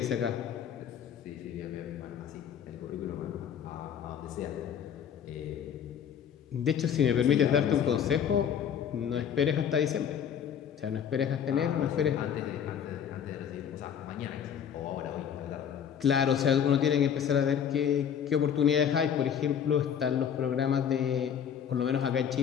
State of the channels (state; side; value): quieter; right; 8.4 dB